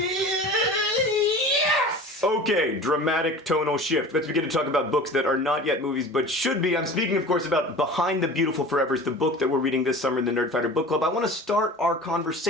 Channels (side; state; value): both; normal; correlation 0.38